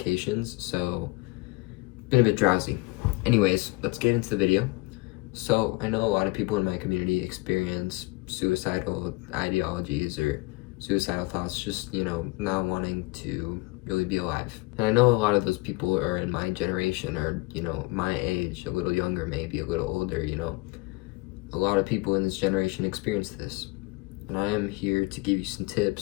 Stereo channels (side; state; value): right; quieter; 23.6 dB